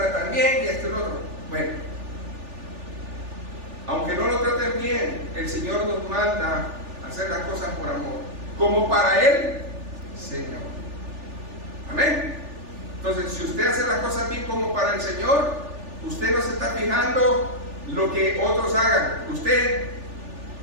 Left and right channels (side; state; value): left; late; 3.4 ms